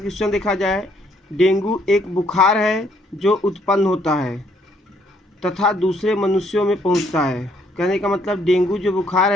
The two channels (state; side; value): normal; both; correlation 0.68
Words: देखा जाए, डेंगू एक बुखार है जो उत्पन्न होता है तथा दूसरे मनुष्यों में पहुंचता है। कहने का मतलब डेंगू जो बुखार